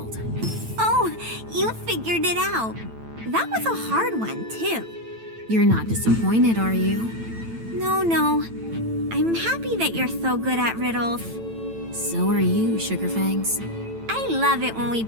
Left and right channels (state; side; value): late; left; 9.0 ms